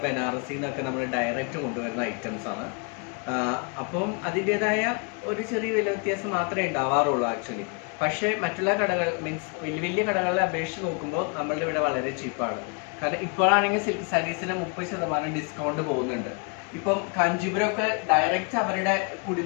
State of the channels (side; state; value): right; quieter; 35.1 dB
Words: ബനാറസിൽ നിന്നൊക്കെ നമ്മൾ ഡയറക്റ്റ് കൊണ്ടുവരുന്ന ഐറ്റംസ് ആണ്. അപ്പം അതിൻ്റെതായ ഒരു ചെറിയ വില വ്യത്യാസം മാത്രമേ ഉണ്ടാവാറുള്ളൂ ആക്ച്വലി. പക്ഷേ മറ്റുള്ള കടകൾ മീൻസ് വലിയ വലിയ കടകളെ അപേക്ഷിച്ച് നോക്കുമ്പോൾ നമ്മളുടെ ഇവിടെ വളരെ ചീപ്പാണ്. കാരണം ഇപ്പോഴാണെങ്കിൽ സിൽക്ക് സാരീസിന് 30% ഡിസ്കൗണ്ട് പോകുന്നുണ്ട്. ഇപ്പം കാഞ്ചീപുരമൊക്കെ ഡയറക്റ്റ് അവരുടെ